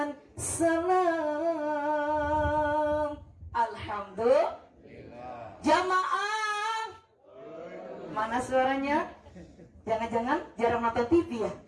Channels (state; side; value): identical; both; correlation 1.00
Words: salam. Alhamdulillah. Jamaah, mana suaranya? Jangan-jangan jarang nonton TV ya?